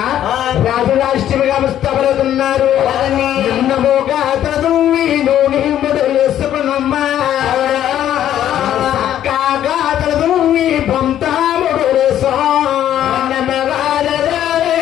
రాజు రాష్ట్రముగా ముస్తాబులుతున్నారు. నిన్నమోగా తదువి నూనె మొదలు వేసుకున్నమ్మా చక్కగా తదువి బొంతాముడు వేసో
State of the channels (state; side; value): quieter; right; 11.2 dB